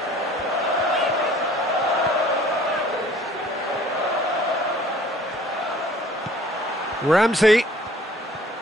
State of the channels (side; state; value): both; normal; correlation 0.53